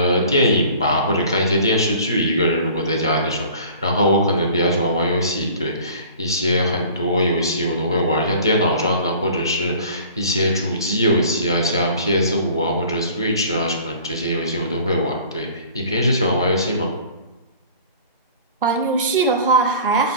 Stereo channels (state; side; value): inverted; both; correlation -0.47